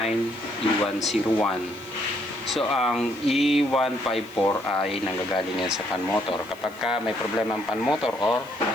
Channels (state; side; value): noise; right; hiss, 24 dB below the sound